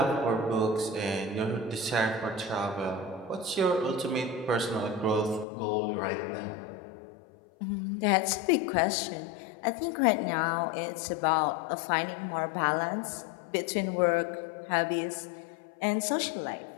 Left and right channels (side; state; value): right; drops out; at 5.5 s